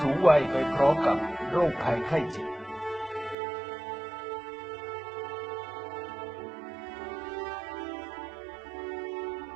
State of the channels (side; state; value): left; drops out; at 3.4 s